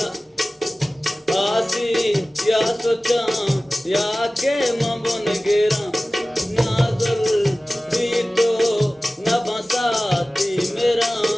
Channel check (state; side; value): normal; both; correlation 0.97